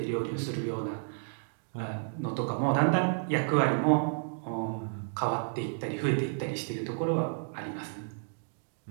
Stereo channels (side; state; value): left; silent; digital silence